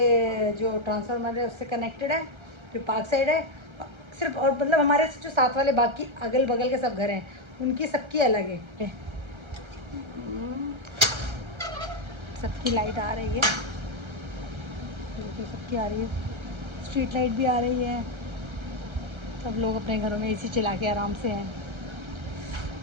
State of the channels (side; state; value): left; late; 1.3 ms